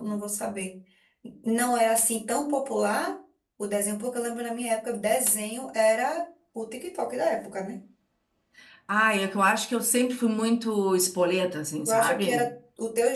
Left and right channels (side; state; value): both; identical; correlation 1.00